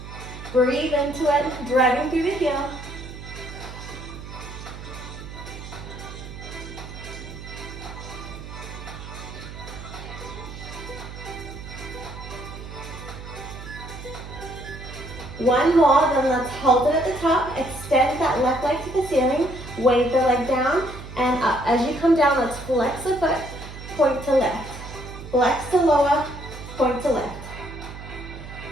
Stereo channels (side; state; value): right; noise; hum, 12 dB below the sound